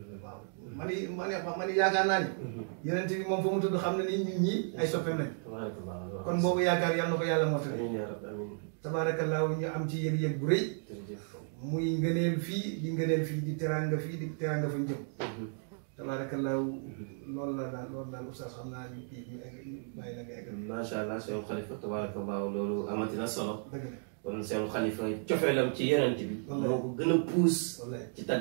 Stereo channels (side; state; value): left; silent; 55 dB below the other